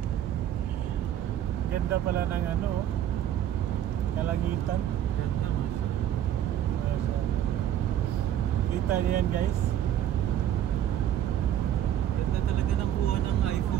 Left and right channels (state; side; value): quieter; left; 11.0 dB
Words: Ganda pala ng ano, Kalangitan. Ganda, masya. Kita niyo yan guys. Ganda talaga ng kuha ng